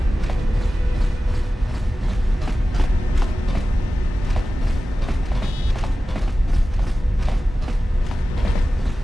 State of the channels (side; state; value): both; normal; correlation 0.95